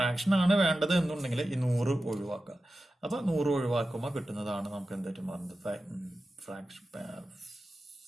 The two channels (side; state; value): both; normal; correlation 0.93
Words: ആണ് വേണ്ടത് എന്നുണ്ടെങ്കിൽ ഈ 100 ഒഴിവാക്കുക. അപ്പൊ 100 ഒഴിവാക്കുമ്പോൾ കിട്ടുന്നതാണ് നമുക്ക് എന്തായിട്ട് മാറുന്നത്?